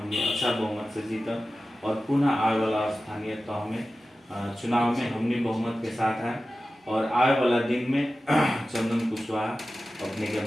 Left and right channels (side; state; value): both; normal; correlation 0.95